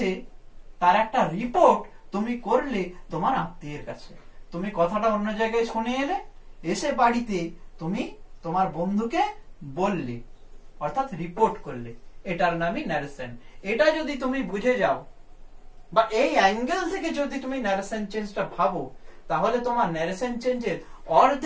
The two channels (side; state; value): both; identical; correlation 1.00